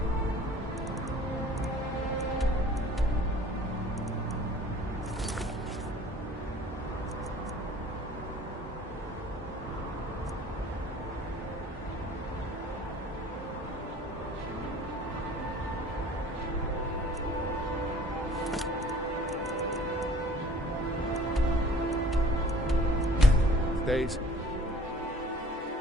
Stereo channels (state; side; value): normal; both; correlation 0.51